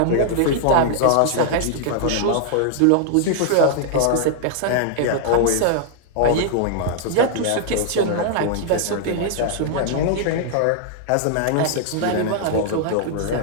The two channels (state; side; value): different; both; correlation -0.01